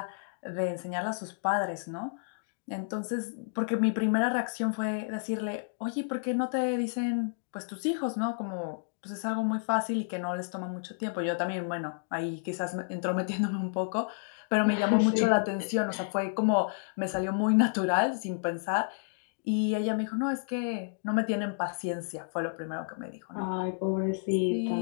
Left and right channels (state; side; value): silent; right; digital silence